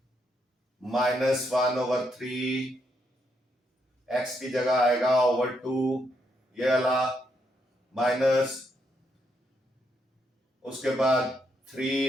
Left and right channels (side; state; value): both; normal; correlation 0.77